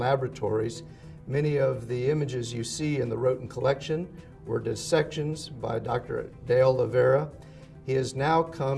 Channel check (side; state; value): both; identical; correlation 1.00